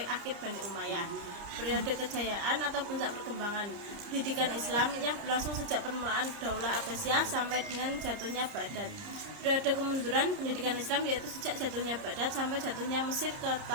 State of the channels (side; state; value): left; late; 30 ms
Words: akhir Bani Umayyah. Periode kejayaan atau puncak perkembangan pendidikan Islam yang berlangsung sejak permulaan Daulah Abbasiyah sampai dengan jatuhnya Baghdad. Periode kemunduran pendidikan Islam yaitu sejak jatuhnya Baghdad sampai jatuhnya Mesir ke